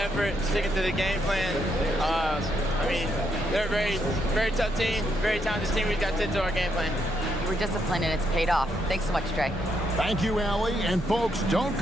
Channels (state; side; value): normal; both; correlation 0.77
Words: sticking to the game plan. I mean, they're a very, very tough team, very talented team. We got to stick to our game plan. You were disciplined and it's paid off. Thanks so much, Trey. Thank you, Allie. And folks, don't